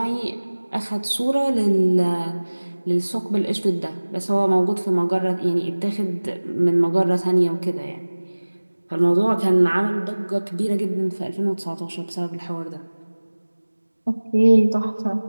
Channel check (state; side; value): inverted; both; correlation -1.00